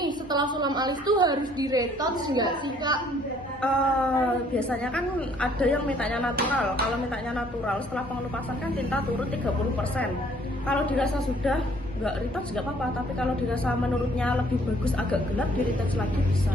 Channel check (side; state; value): both; normal; correlation 0.60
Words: setelah sulam alis tuh harus di-retouch nggak sih Kak? Biasanya kan ada yang mintanya natural. Kalau mintanya natural setelah pengelupasan kan tinta turun 30%. Kalau dirasa sudah nggak retouch nggak apa-apa, tapi kalau dirasa menurutnya lebih bagus agak gelap, di retouch lagi